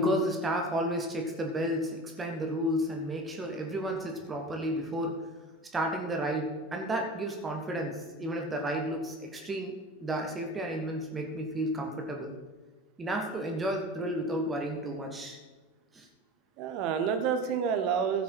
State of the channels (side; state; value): both; normal; correlation 0.35